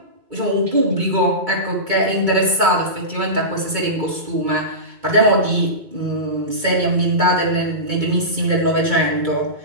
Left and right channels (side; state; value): left; late; 2.2 ms